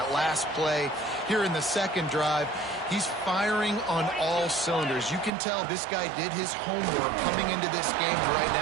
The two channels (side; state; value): left; drops out; at 5.3 s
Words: last play. Here in the second drive, he's firing on all cylinders. You can tell this guy did his homework coming into this game right